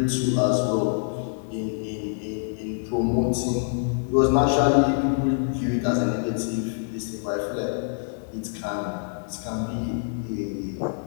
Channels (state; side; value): silent; right; digital silence